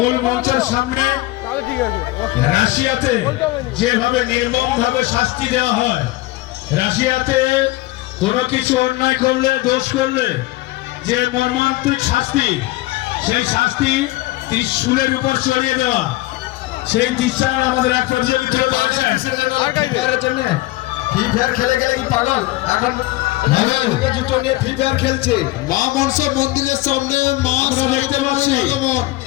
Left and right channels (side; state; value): right; quieter; 19.2 dB